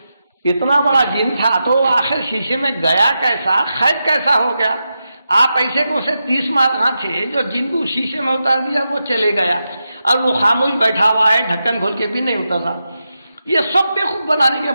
اتنا بڑا جن تھا تو آخر شیشے میں گیا کیسا؟ قید کیسا ہو گیا؟ آپ ایسے کو سے 30 مارکاں تھے جو جن کو شیشے میں اتار دیا وہ چلے گیا، اور وہ خاموش بیٹھا ہوا ہے، ڈھکن کھول کے بھی نہیں اترا۔ یہ سب بیوقوف بنانے کی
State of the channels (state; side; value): inverted; both; correlation -0.88